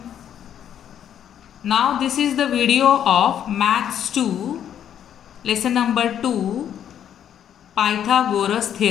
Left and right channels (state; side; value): quieter; right; 9.7 dB